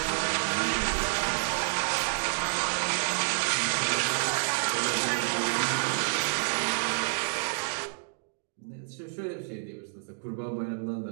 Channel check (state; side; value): silent; left; digital silence